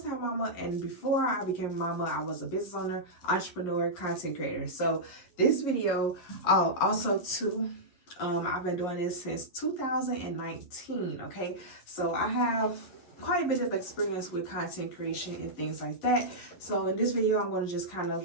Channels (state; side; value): late; right; 11 ms